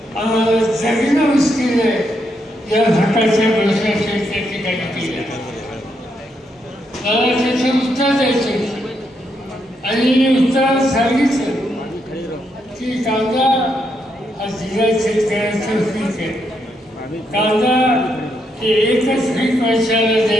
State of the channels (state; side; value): normal; both; correlation 0.79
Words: आम्हाला जगणं मुश्किल आहे या प्रकारच्या प्रश्नाचे त्या ठिकाणी केले। मला त्याचं उत्तर द्यायचं आणि मी उत्तर सांगितलं की कांदा हा जिल्हा शेतकऱ्याचं पीक आहे, कांदा हे एकच पीक वर्षाला